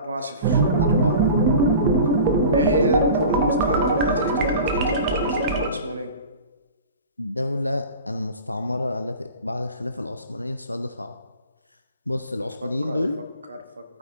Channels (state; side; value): inverted; both; correlation -0.39